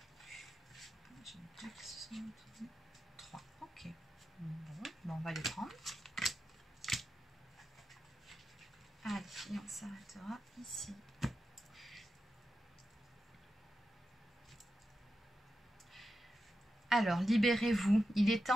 On va les prendre. Alors, libérez-vous. Il est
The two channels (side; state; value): both; normal; correlation 0.90